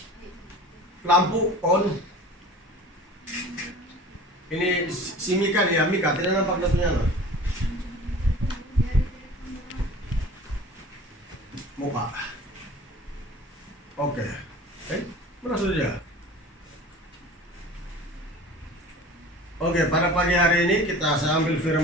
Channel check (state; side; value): normal; both; correlation 0.41